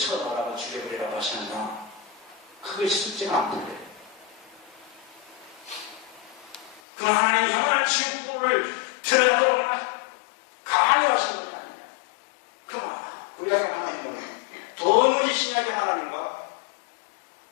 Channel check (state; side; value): drops out; right; at 6.8 s